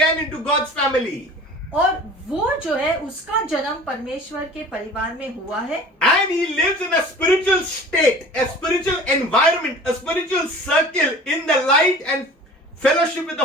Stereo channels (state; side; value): normal; both; correlation 0.43